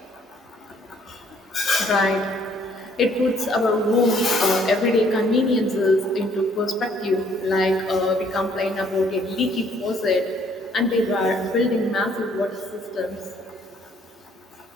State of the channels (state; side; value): normal; both; correlation 0.63